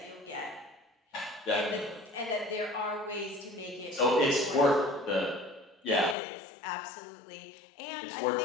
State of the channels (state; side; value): drops out; right; at 6.2 s